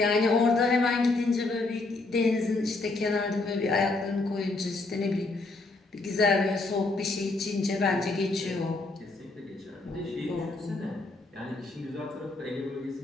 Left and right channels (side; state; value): right; quieter; 3.3 dB